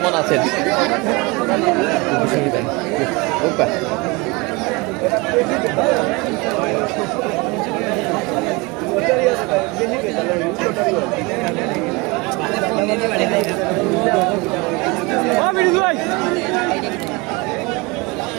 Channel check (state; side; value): quieter; left; 25.7 dB